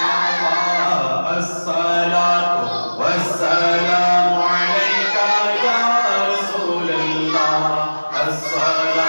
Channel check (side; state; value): both; inverted; correlation -1.00